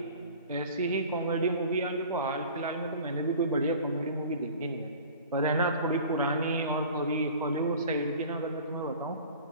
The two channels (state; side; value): inverted; both; correlation -0.43